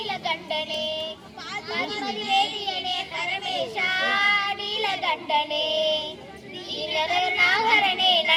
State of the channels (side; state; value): both; identical; correlation 1.00